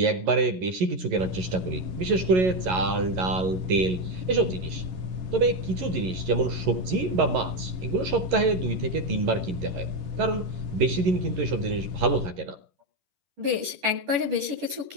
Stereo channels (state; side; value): late; left; 11 ms